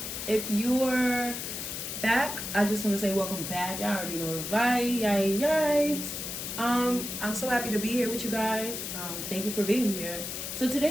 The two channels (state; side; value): noise; left; hiss, 6 dB below the sound